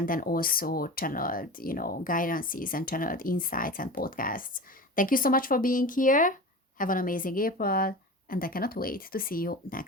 then also channeled, guidances and channeled insights and podcasts. Thank you so much for being here. Have an amazing April, and I cannot wait to see you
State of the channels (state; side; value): normal; both; correlation 0.31